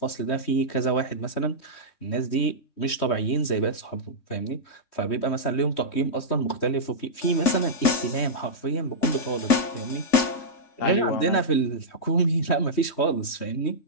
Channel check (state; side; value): late; right; 3.1 ms